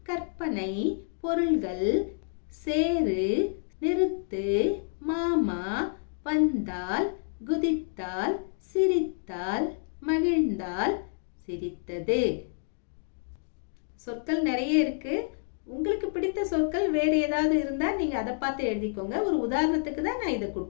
கற்பனை, பொருள்கள், சேரு, நிறுத்து, மாமா, வந்தால், குதித்தால், சிரித்தால், மகிழ்ந்தால், சிரித்தது. சொற்கள் நிறைய இருக்கு. உங்களுக்கு பிடித்த சொற்கள் வேறு ஏதாவது இருந்தா நீங்க அதை பார்த்து எழுதிக்கோங்க. ஒரு உதாரணத்துக்கு தான் நான் இதை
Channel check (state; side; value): silent; right; digital silence